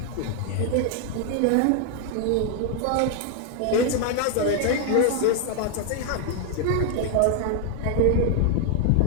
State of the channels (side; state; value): both; different; correlation 0.00